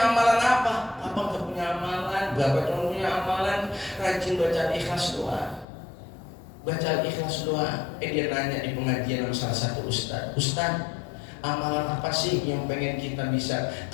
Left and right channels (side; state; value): right; drops out; at 5.7 s